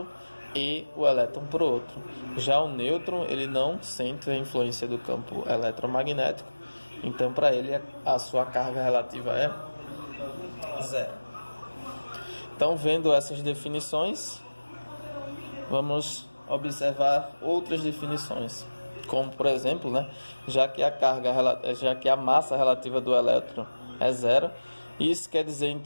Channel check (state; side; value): inverted; both; correlation -1.00